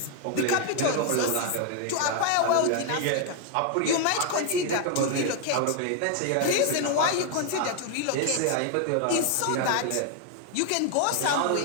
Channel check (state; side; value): different; both; correlation 0.01